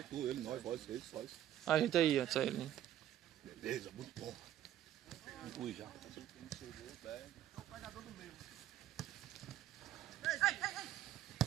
tu, ele, nós, vós. A gente aí, antes aí. Né? Beleza, muito bom. Inclui já.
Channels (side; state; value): left; quieter; 12.0 dB